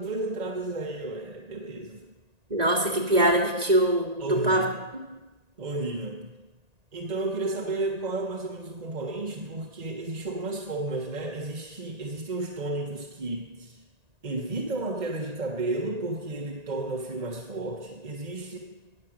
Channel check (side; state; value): left; late; 1.9 ms